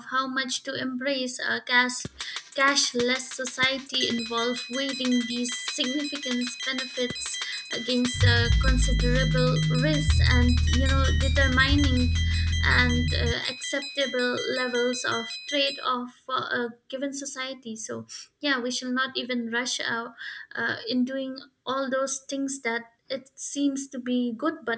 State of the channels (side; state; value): both; identical; correlation 1.00